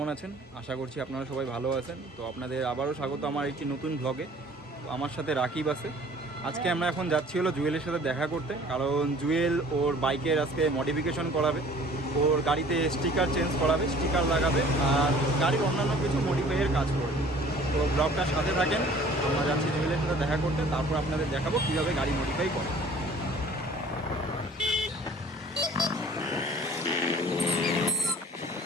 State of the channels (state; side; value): normal; both; correlation 0.50